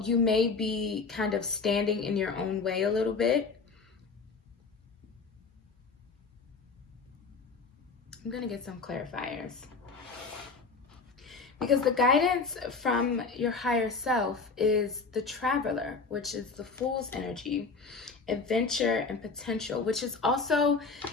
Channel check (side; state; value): right; quieter; 4.5 dB